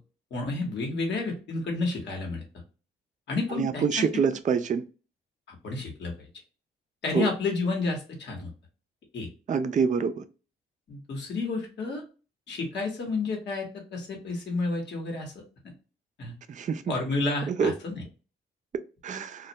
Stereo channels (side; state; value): both; normal; correlation 0.59